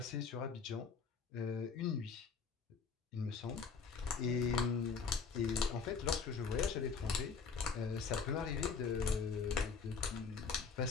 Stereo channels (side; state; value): right; quieter; 5.4 dB